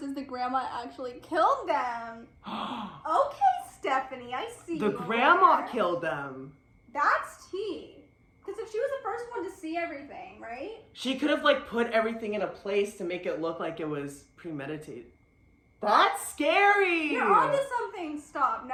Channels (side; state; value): both; identical; correlation 1.00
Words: is the grandma actually killed them. Okay, Stephanie, I see. The you grandma there. killed them. That's tea. Because if she was the first one to see everything, right? She could have like put everything in a place to make it look like it was premeditated. That's scary. You're onto something. Stop.